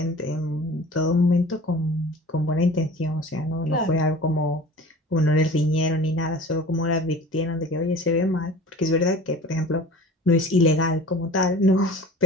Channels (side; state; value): both; normal; correlation 0.41